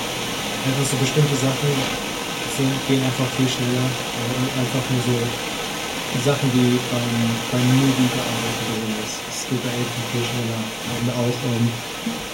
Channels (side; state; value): both; identical; correlation 1.00